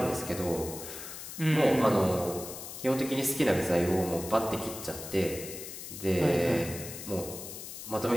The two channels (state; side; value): noise; left; hiss, 10 dB below the sound